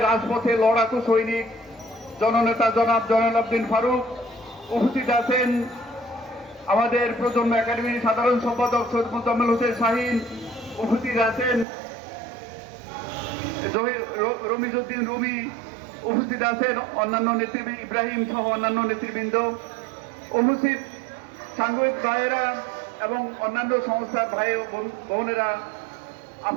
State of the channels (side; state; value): left; drops out; at 11.7 s